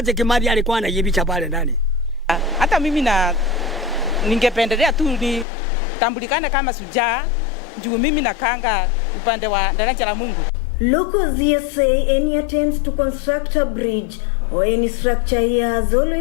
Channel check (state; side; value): drops out; right; at 5.5 s